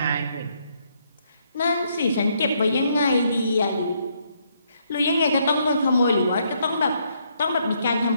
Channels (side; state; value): both; inverted; correlation -0.73